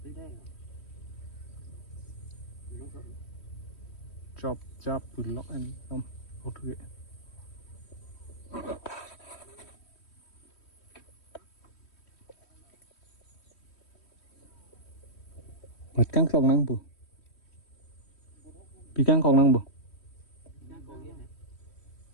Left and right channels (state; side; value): late; right; 3.1 ms